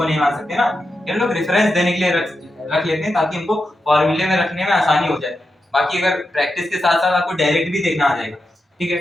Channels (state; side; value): normal; both; correlation 0.88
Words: नहीं मान सकते ना, ये लोग रेफरेंस देने के लिए रख लेते हैं ताकि हमको फॉर्मूले में रखने में आसानी हो जाए। बाकी अगर प्रैक्टिस के साथ साथ आपको डायरेक्ट भी देखना आ जाएगा। ठीक